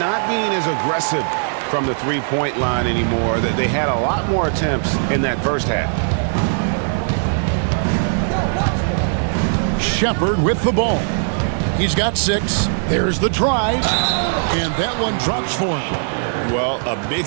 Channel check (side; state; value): left; silent; digital silence